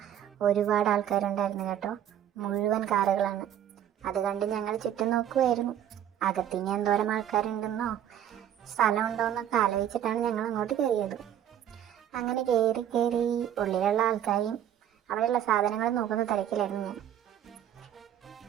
ഒരുപാട് ആൾക്കാരുണ്ടായിരുന്നു കേട്ടോ. മുഴുവൻ കാറുകളാണ്. അത് കണ്ട് ഞങ്ങൾ ചുറ്റും നോക്കുമായിരുന്നു. അകത്തിനി എന്തോരം ആൾക്കാരുണ്ടെന്നോ സ്ഥലമുണ്ടോ എന്നൊക്കെ ആലോചിച്ചിട്ടാണ് ഞങ്ങൾ അങ്ങോട്ട് കയറിയത്. അങ്ങനെ കയറി ഉള്ളിലുള്ള ആൾക്കാരെയും അവിടെയുള്ള സാധനങ്ങൾ നോക്കുന്ന തിരക്കിലായിരുന്നു ഞാൻ.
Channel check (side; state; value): left; quieter; 10.6 dB